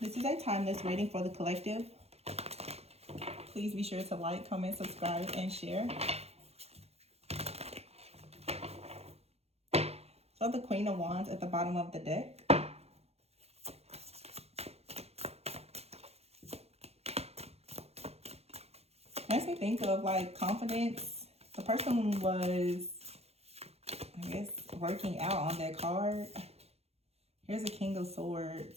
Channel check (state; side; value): late; left; 0.30 ms